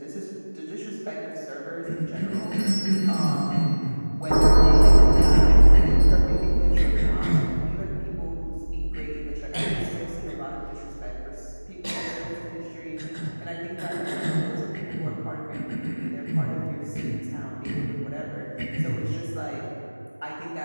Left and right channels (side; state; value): both; inverted; correlation -1.00